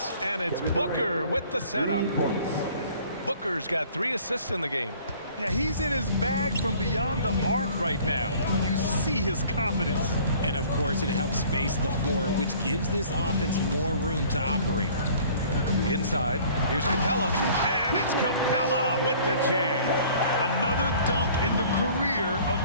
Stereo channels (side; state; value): both; inverted; correlation -0.52